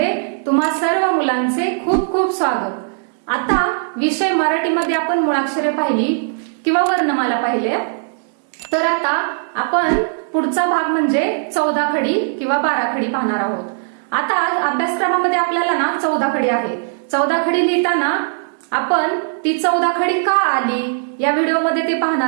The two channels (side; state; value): left; silent; digital silence